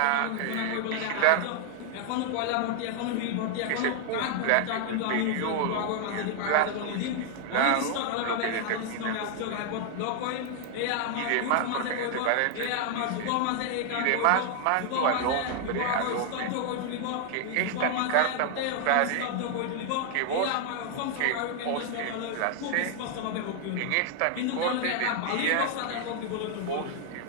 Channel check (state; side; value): different; both; correlation 0.00